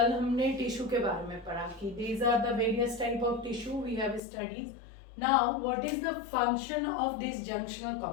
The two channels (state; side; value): drops out; right; at 4.2 s